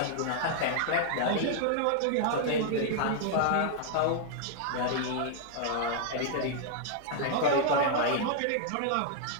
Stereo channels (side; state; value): both; different; correlation -0.01